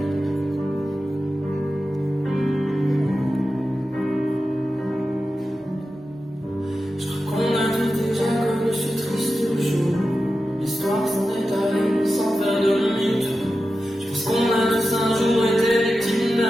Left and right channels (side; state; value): both; normal; correlation 0.92